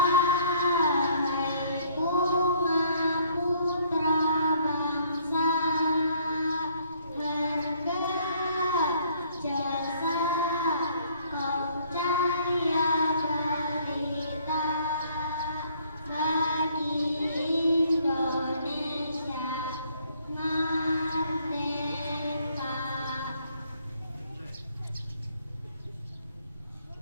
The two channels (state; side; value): inverted; both; correlation -0.63